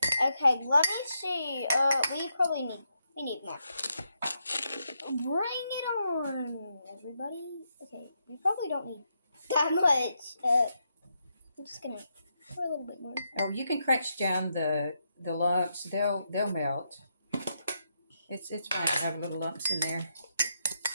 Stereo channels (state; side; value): inverted; both; correlation -0.82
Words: Okay, let me see. We need more. Bring it on, everybody. Okay, we probably don't need that much. I'm just gonna pour a little bit more. Oh, you can crunch down the lumps. They'll melt. It's fine to have little lumps in there.